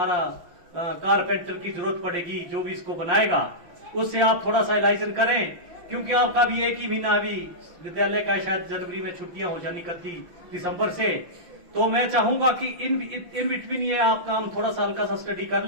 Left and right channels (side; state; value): left; late; 5.7 ms